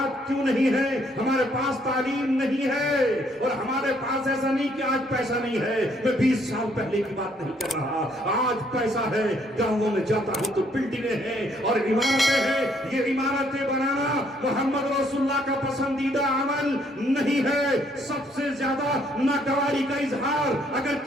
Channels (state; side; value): normal; both; correlation 0.68